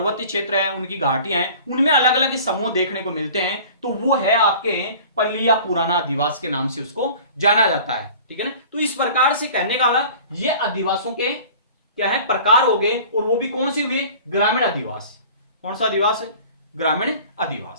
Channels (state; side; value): inverted; both; correlation -0.44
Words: क्षेत्र है, उनकी घाटियां हैं, उनमें अलग अलग समूह देखने को मिलते हैं, तो वो है आपके पल्लिया पुराना आदिवास के नाम से उसको जाना जाता है, ठीक है ना। तो इस प्रकार से कहने का ये आदिवासों के क्या है? प्रकार हो गए, और वो भी कौन से हुए? ग्रामीण आदिवास। कौन सा आदिवास है? ग्रामीण